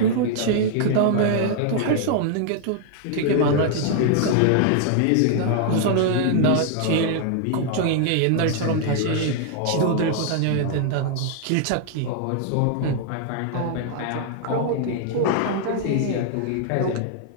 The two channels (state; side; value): different; both; correlation 0.00